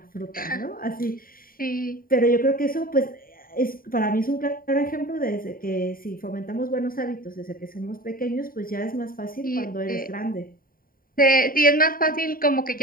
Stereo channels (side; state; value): right; late; 0.41 ms